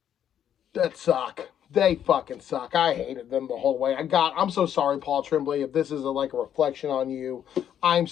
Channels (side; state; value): right; quieter; 9.7 dB